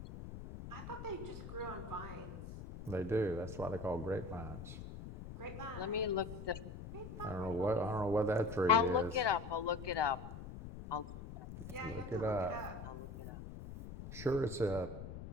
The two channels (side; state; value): left; noise; rumble, 10 dB below the sound